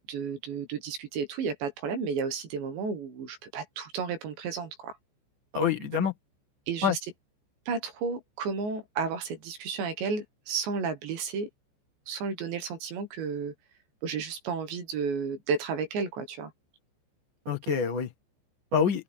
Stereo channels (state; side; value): late; left; 14 ms